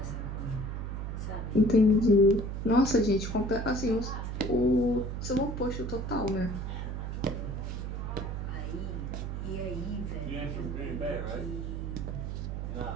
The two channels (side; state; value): right; noise; hum, 4 dB below the sound